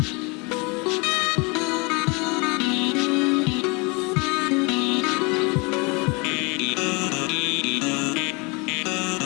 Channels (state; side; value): quieter; right; 29.2 dB